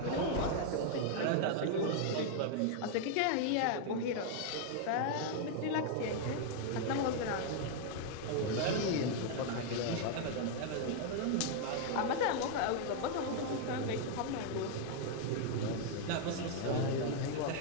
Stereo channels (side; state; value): both; different; correlation 0.00